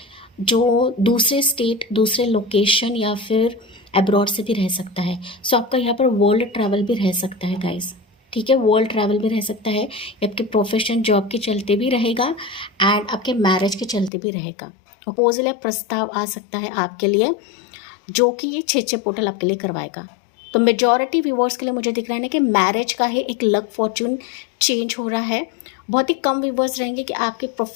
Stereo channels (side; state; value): right; drops out; at 14.1 s